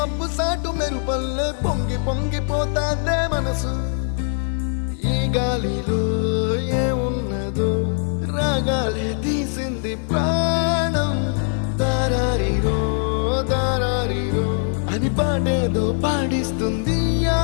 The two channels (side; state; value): right; silent; 64 dB below the other